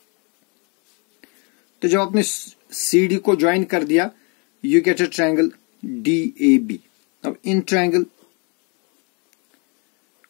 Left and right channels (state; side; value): quieter; right; 34.0 dB